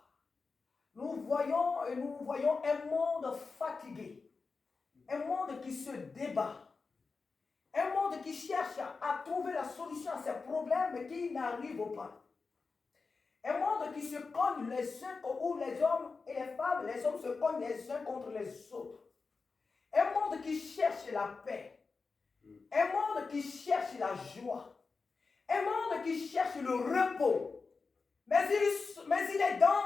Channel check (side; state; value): right; quieter; 4.4 dB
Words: Nous voyons un monde fatigué. Un monde qui se débat. Un monde qui cherche à trouver la solution à ses problèmes mais qui n'arrive pas. Un monde qui se cogne les uns, où les hommes et les femmes, les hommes se cognent les uns contre les autres. Un monde qui cherche la paix. Un monde qui cherche la joie. Un monde qui cherche le repos. Mais il est